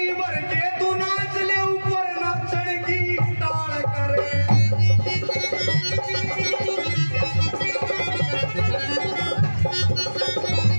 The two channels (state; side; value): inverted; both; correlation -1.00